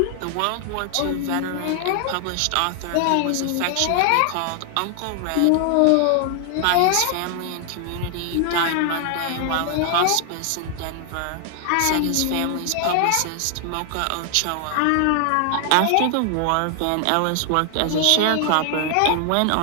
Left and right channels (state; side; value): different; both; correlation 0.00